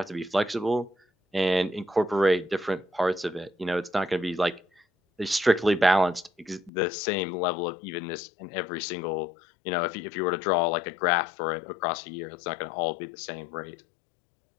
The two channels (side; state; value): right; drops out; at 6.7 s